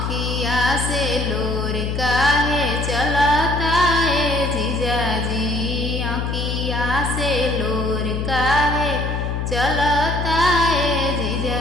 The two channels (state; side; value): noise; left; hum, 2 dB below the sound